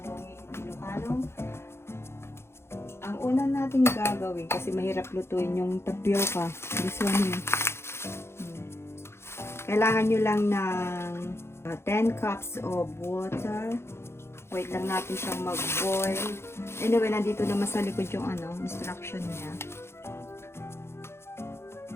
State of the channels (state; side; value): late; right; 0.12 ms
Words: Ilocano. Ang una natin gagawin, kasi mahirap lutuin yung tapioca. This one here. Kailangan nyo lang ng 10 cups of water. Wait lang natin siyang mag-boil. Anyway, nandito naman sa likod yung instruction niya.